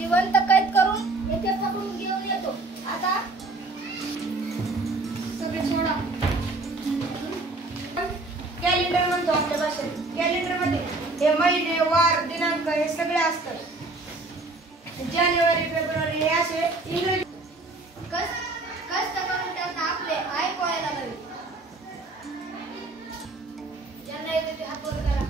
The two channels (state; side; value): quieter; left; 3.2 dB